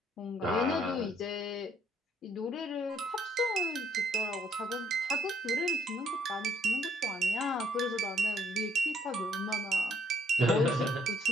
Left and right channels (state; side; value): normal; both; correlation 0.67